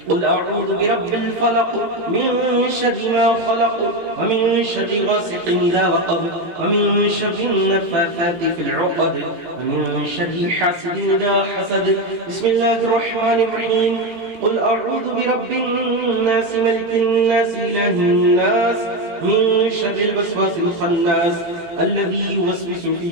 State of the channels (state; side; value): late; left; 18 ms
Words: قل أعوذ برب الفلق من شر ما خلق ومن شر غاسق إذا وقب ومن شر النفاثات في العقد ومن شر حاسد إذا حسد. بسم الله الرحمن الرحيم. قل أعوذ برب الناس ملك الناس إله الناس من شر الوسواس الخناس الذي يوسوس في